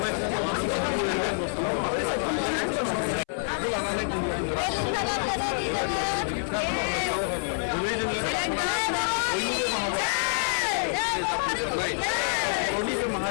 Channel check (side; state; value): right; silent; 60 dB below the other